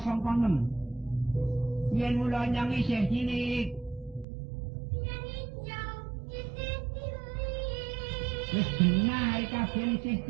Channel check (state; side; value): drops out; left; at 4.2 s